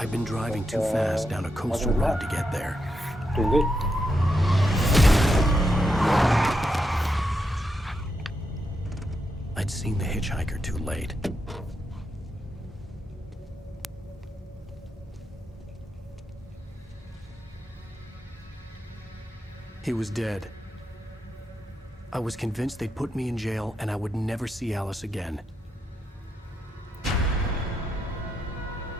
been driving too fast down a coastal road to get there. Doing good. I'd seen the hitchhiker too late. He was dead. I was convinced they'd put me in jail and I would never see Alice again.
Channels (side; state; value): both; normal; correlation 0.83